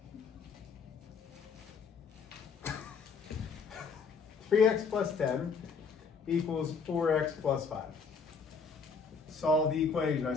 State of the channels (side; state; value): right; quieter; 5.3 dB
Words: 3x plus 10 equals 4x plus 5. Solve the equation. I